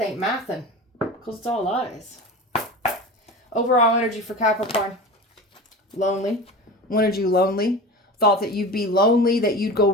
ain't mathin'. Because it's all lies. Overall energy for Capricorn. Lonely. Wanted you lonely. Thought that you'd be lonely, that you'd go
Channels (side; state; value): both; normal; correlation 0.31